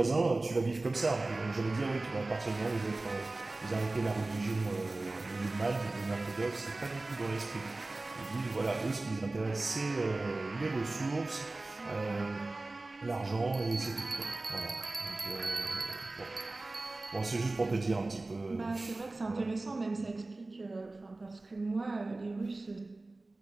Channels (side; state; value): left; quieter; 3.1 dB